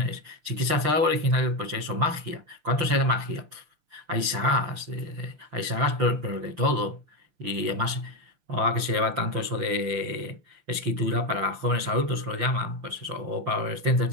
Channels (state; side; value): late; left; 6.5 ms